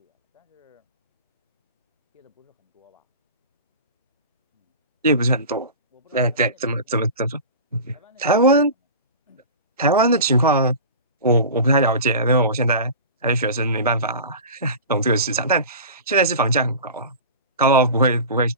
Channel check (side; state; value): both; inverted; correlation -0.34